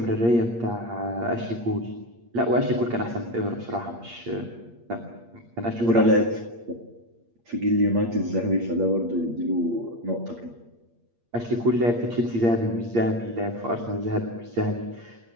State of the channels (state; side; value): late; left; 8.6 ms